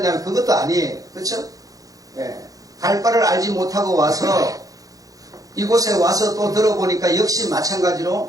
그것도 아니에요. 그렇죠? 예. 갈 바를 알지 못하고 와서 이곳에 와서 또 들어보니까 역시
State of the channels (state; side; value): late; left; 0.17 ms